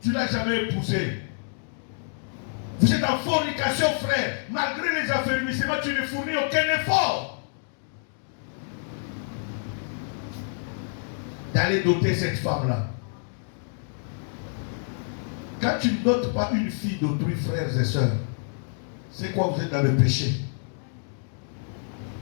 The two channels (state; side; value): silent; right; digital silence